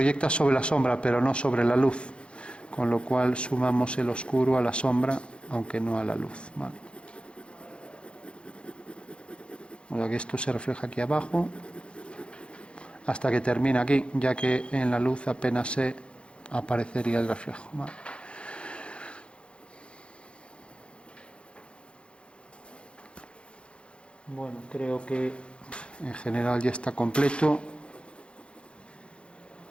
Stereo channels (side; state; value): right; late; 0.057 ms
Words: sobre la sombra pero no sobre la luz, con lo cual sumamos el oscuro a la sombra aunque no a la luz, ¿vale? O sea que esto se refleja aquí abajo hasta que termina aquí, ya que en la luz apenas se aparecería el reflejo, ¿vale? Bueno, creo que en general ya está completo.